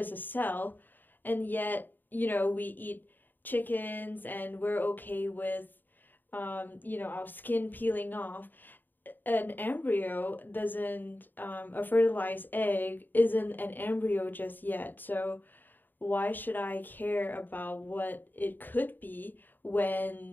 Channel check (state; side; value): late; right; 0.090 ms